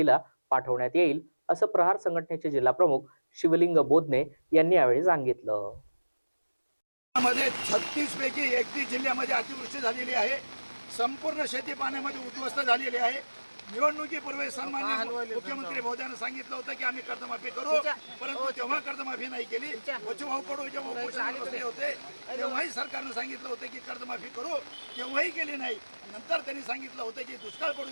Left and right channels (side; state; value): both; inverted; correlation -1.00